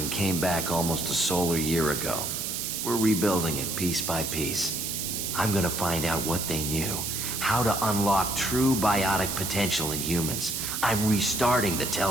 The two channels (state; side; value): noise; right; hiss, 3 dB below the sound